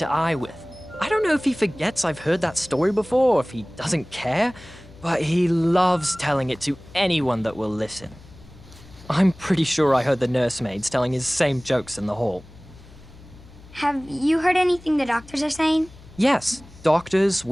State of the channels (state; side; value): noise; left; hum, 21 dB below the sound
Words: eye with. I don't know if he forgets I've heard that story before or if he doesn't care, but he loves telling it to anyone that will listen. I'm pretty sure I heard the nursemaids telling his same jokes in the hall. Have you heard anything the doctors are saying? Yes, doctors,